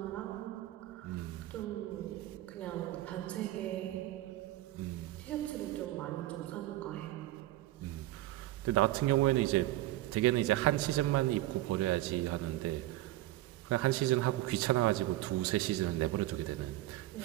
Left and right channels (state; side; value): quieter; left; 16.0 dB